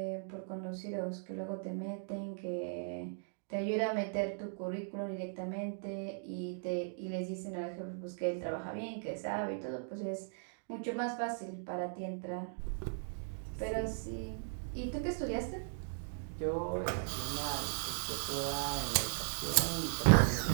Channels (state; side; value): silent; left; digital silence